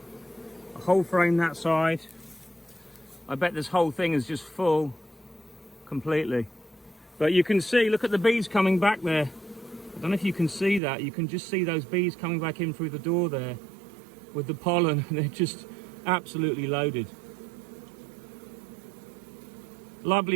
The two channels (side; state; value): left; drops out; at 10.8 s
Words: a whole frame that side. I bet this whole thing is just full completely. But you can see, look at the bees coming back there. I don't know if you can see that. You can just see those bees coming back in through the door there with the pollen. They're just absolutely loaded.